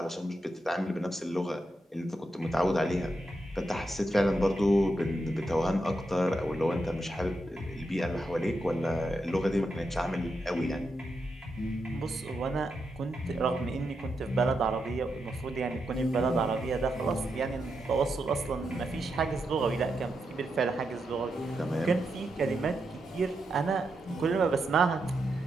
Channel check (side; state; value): both; normal; correlation 0.85